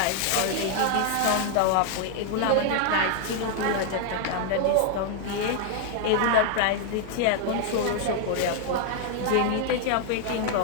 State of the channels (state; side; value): different; both; correlation 0.00